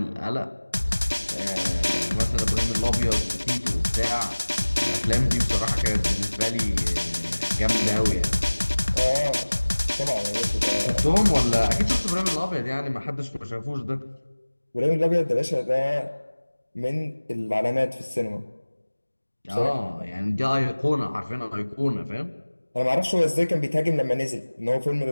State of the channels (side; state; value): both; inverted; correlation -1.00